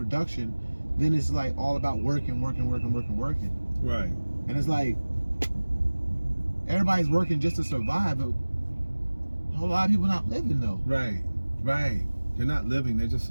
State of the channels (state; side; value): inverted; both; correlation -1.00